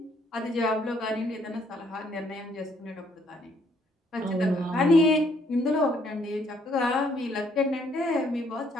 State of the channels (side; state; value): both; normal; correlation 0.67